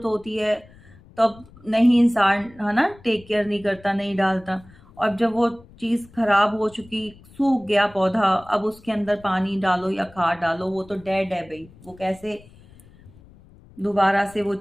होती है तब नहीं इंसान है ना टेक केयर नहीं करता, नहीं डालता। और जब वो चीज़ खराब हो चुकी, सूख गया पौधा, अब उसके अंदर पानी डालो या खाद डालो, वो तो डेड है भाई, वो कैसे दोबारा से वो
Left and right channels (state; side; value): noise; left; rumble, 24 dB below the sound